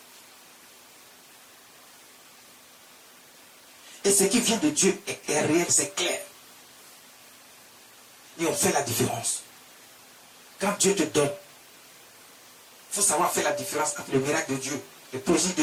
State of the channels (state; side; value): identical; both; correlation 1.00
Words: Et ce qui vient de Dieu est réel, c'est clair. Et on fait la différence. Quand Dieu te donne, il faut savoir faire la différence entre le miracle de Dieu, les prodiges